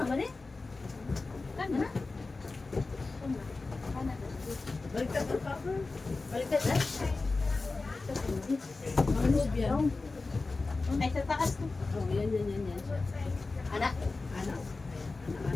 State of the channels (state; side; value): quieter; right; 3.7 dB